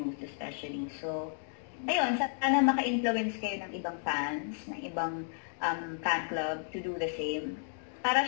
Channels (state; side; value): silent; right; digital silence